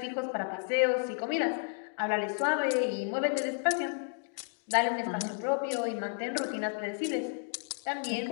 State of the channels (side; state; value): right; silent; 56 dB below the other